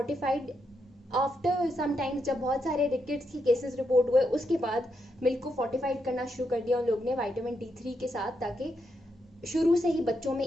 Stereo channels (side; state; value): both; normal; correlation 0.81